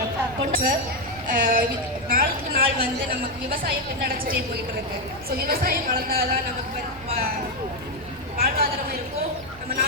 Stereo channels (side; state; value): right; noise; rumble, 20 dB below the sound